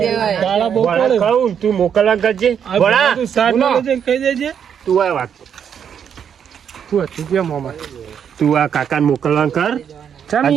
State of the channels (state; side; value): quieter; left; 8.1 dB